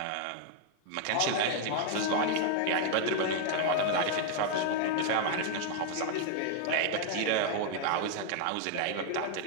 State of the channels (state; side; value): different; both; correlation 0.00